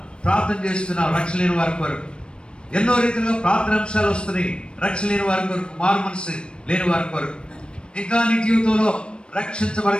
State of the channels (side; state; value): right; late; 0.055 ms